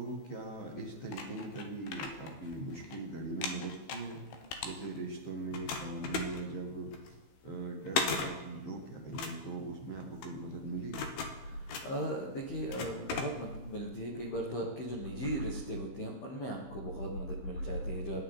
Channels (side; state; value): right; late; 15 ms